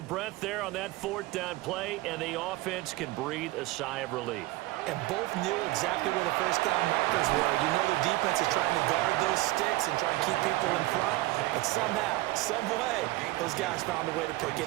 there on that 4th down play, and the offense can breathe a sigh of relief. And both knew exactly where the first down markers were. You know the defense is trying to guard those sticks and try and keep people in front. But somehow, some way, those guys found a way to pick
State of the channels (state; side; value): quieter; left; 19.2 dB